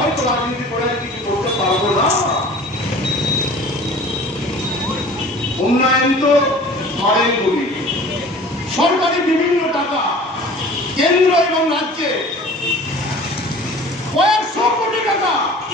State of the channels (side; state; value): both; normal; correlation 0.44